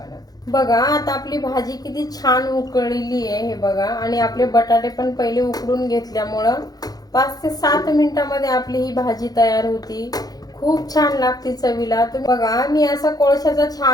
बघा आता आपली भाजी किती छान उकळलेली आहे। हे बघा आणि आपले बटाटे पण पहिले उकडून घेतल्यामुळं 5 ते 7 मिनिटांमध्ये आपली ही भाजी तयार होती। खूप छान लागते चवीला। तुम्ही बघा मी असा कोळशाचा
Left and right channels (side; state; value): right; late; 0.19 ms